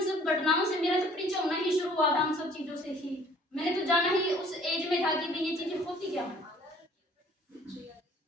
सब घटनाओं से, मेरा तो परिचय होना ही शुरू हुआ था उन सब चीजों से ही। मैंने तो जाना ही उस एज में था कि भाई ये चीजें होती क्या है।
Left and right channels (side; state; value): both; normal; correlation 0.55